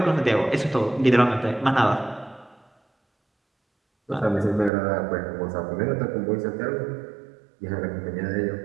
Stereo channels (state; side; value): drops out; left; at 4.7 s